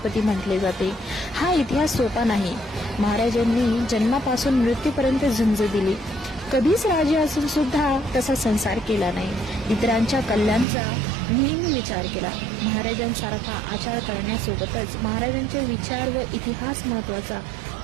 म्हटले जाते। हा इतिहास सोपा नाही। महाराजांनी जन्मापासून मृत्यूपर्यंत झुंज दिली। कधीच राजे असून सुद्धा तसा संसार केला नाही। इतरांच्या कल्याणाचा नेहमी विचार केला। महाराजांसारखा आचार करण्यासोबतच महाराजांचे विचार व इतिहास महत्वाचा,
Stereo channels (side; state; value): left; drops out; at 10.7 s